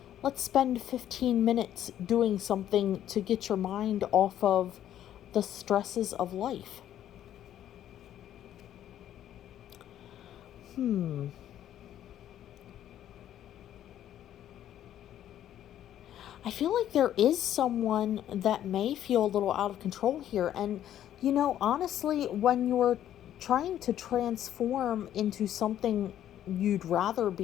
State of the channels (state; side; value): quieter; right; 11.3 dB